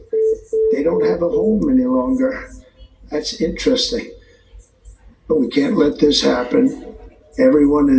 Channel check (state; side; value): identical; both; correlation 1.00